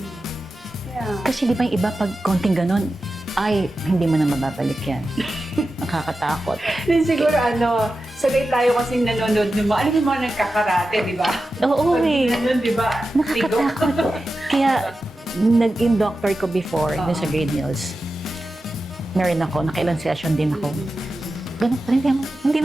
Yeah. Kasi di ba yung iba pag konting ganun, ay, hindi mo na mababalik yan. Nakakatakot. Then siguro sagay tayo kasing nanonood ng mga, ano yung mga nagkakarate, di ba? Oo eh. Ganun, di ba? Nakakatakot. Kaya, nag-in doctor ko before, dun sa Green Hills. Meron ako, nakailang session din ako. Ganun pa rin, hindi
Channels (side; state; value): both; normal; correlation 0.92